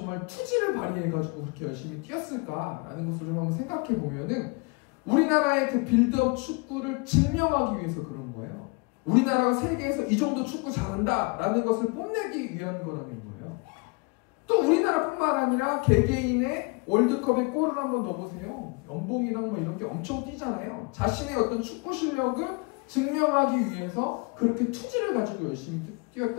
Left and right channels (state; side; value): quieter; right; 29.9 dB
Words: 투지를 발휘해가지고 그렇게 열심히 뛰었을까라는 것을 좀 한번 생각해 보면은 우리나라의 그 빌드업 축구를 증명하기 위해서 그런 거예요. 우리나라가 세계에서 이 정도 축구 잘한다라는 것을 뽐내기 위한 거라는 거예요. 또 우리나라뿐만 아니라 개개인의 월드컵에 골을 한번 넣어보세요. 연봉이랑 뭐 이런 게 엄청 뛰잖아요. 자신의 어떤 축구 실력을 증명하기 위해서 그렇게 투지를 가지고 열심히